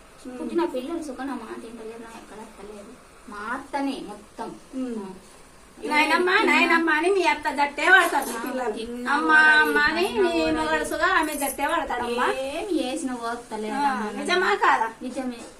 పుట్టిన పిల్లలు సుఖన మాట తింటలేరు. నా ఎక్కడ అత్తలేదు. మా అత్తనే మొత్తం. నాయనమ్మా నాయనమ్మ అని మీ అత్త దట్టే వాడతారు పిల్లలు. అమ్మ అమ్మ అని నీ మొగడుసుగా ఆమె దట్టే వాడతాడమ్మా. ఏమి చేసిన పోతలేదు. నిజమా కాదా? నిజమే.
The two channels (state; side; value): identical; both; correlation 1.00